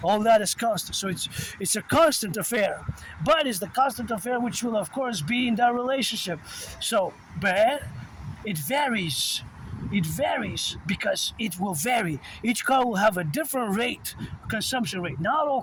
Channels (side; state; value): both; identical; correlation 1.00